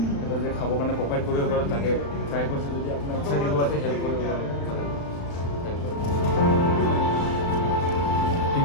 যে খাবৰ কাৰণে প্ৰভাইড কৰিব পাৰোঁ তাকে ট্ৰাই কৰিছোঁ। যদি আপোনাৰ ইচ্ছা দিব আছে হেল্প কৰিব পাৰোঁ, হেল্প কৰিব। ठीक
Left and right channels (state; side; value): late; right; 35 ms